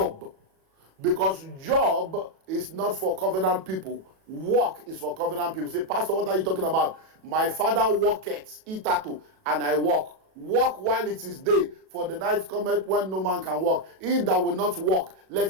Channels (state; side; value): late; left; 37 ms